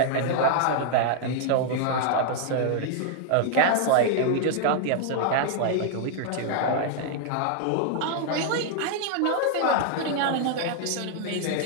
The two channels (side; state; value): both; different; correlation 0.00